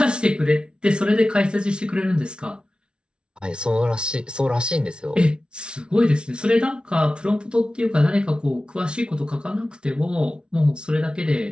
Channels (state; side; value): late; left; 0.056 ms